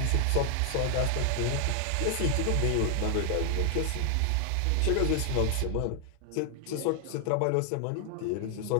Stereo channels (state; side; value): different; both; correlation 0.00